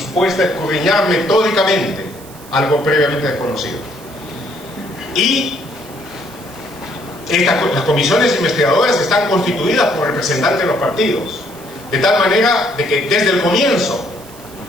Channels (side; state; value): right; noise; hiss, 20 dB below the sound